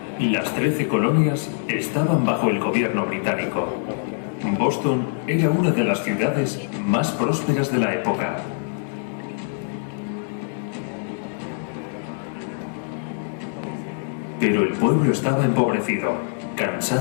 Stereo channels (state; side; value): silent; right; 63 dB below the other